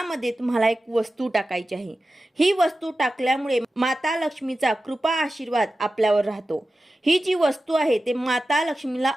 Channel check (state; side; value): normal; both; correlation 0.94